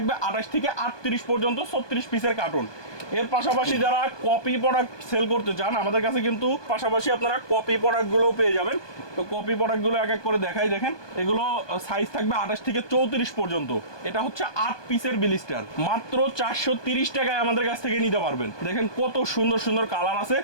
28 থেকে 38 পর্যন্ত, 36 পিসের কার্টুন। এর পাশাপাশি যারা কপি প্রোডাক্ট সেল করতে চান আমাদের কাছে কিন্তু পাশাপাশি আপনারা কপি প্রোডাক্টগুলোও পেয়ে যাবেন। তো কপি প্রোডাক্টগুলো এক এক করে দেখাই। দেখেন এগুলো সাইজ থাকবে 28 থেকে 34 পর্যন্ত। এটা হচ্ছে 8 পিসের ব্লিস্টার, মাত্র 430 টাকায় আমাদের কাছ থেকে নিতে পারবেন। দেখেন কত সুন্দর সুন্দর কালার আছে।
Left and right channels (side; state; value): right; late; 1.2 ms